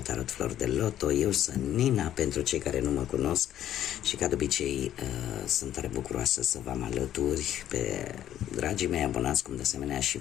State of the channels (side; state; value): right; quieter; 11.7 dB